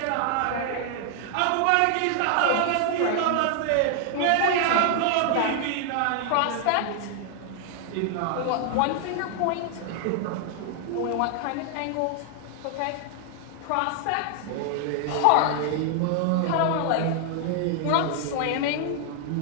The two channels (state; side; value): different; both; correlation 0.00